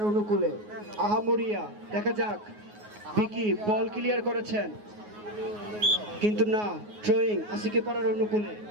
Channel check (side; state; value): left; late; 9.5 ms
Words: অনুকূলে আহামরিয়া, দেখা যাক বিকি বল ক্লিয়ার করেছেন কিন্তু না, ড্রয়িং আশিকিপাড়ার অনুকূলে